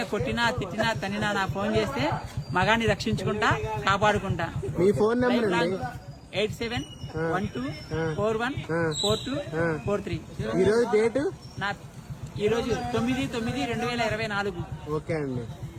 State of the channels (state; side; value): identical; both; correlation 1.00